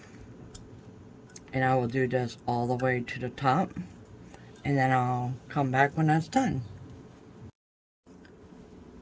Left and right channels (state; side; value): identical; both; correlation 1.00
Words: And I will do this all the way to the top, and then I'll come back when that's done.